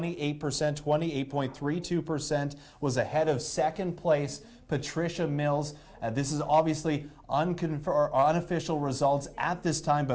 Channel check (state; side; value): identical; both; correlation 1.00